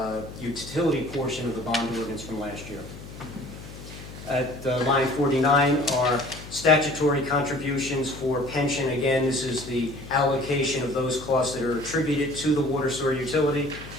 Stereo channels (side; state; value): left; noise; hum, 14 dB below the sound